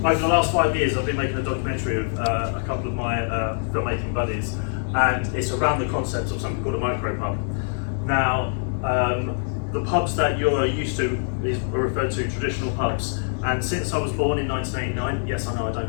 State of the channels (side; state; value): right; silent; digital silence